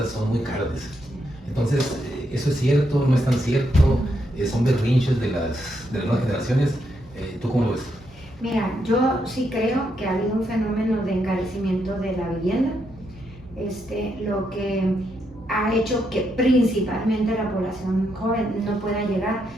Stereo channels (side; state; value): both; normal; correlation 0.79